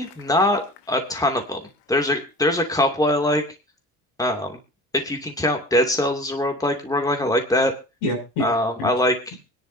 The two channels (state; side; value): normal; both; correlation 0.39